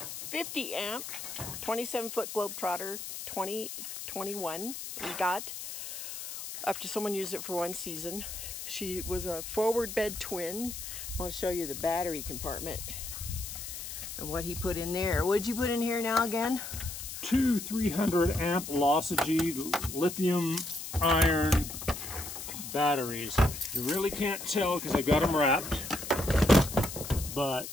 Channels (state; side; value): noise; left; hiss, 8 dB below the sound